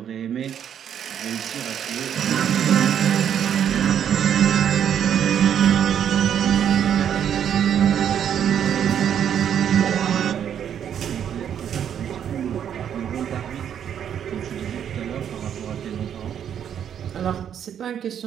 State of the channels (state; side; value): quieter; left; 9.1 dB